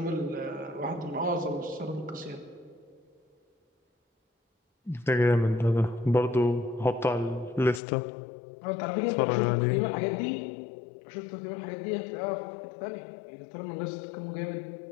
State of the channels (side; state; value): right; drops out; at 7.8 s